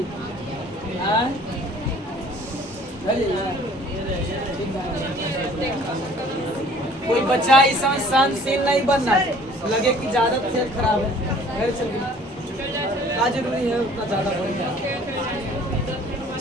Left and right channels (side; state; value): both; normal; correlation 0.53